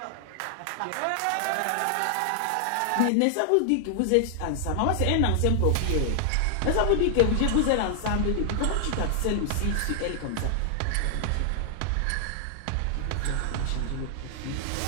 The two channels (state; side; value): different; both; correlation 0.00